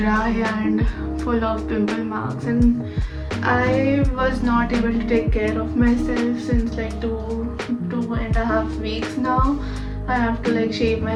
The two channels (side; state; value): both; identical; correlation 1.00